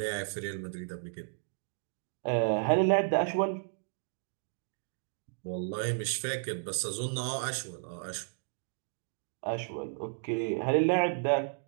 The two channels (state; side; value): silent; left; digital silence